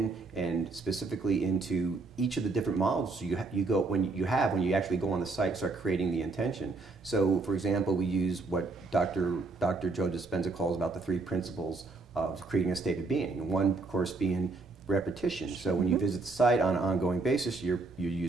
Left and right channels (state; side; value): quieter; left; 3.6 dB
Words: and specifically into each of the different models when you actually go on the site and start creating the intention. So, for example, we use what Dr. Joe Dispenza calls about the three principles of creating a state of being. One, of course, being repetition. So when you visit the site on an ongoing basis, you're